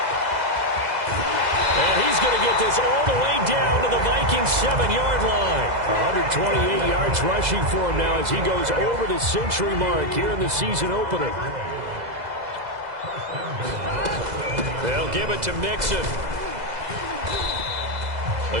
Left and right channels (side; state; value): left; late; 2.0 ms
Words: And he's going to get this all the way down to the Vikings 7-yard line. 128 yards rushing for him now as he goes over the century mark here in the season opener. They'll give it to Mixon. A